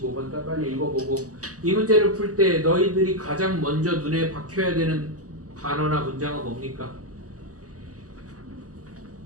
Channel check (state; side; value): late; left; 0.67 ms